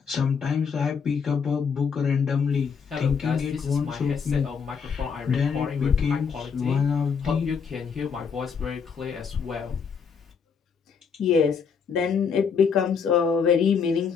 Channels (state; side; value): quieter; right; 6.1 dB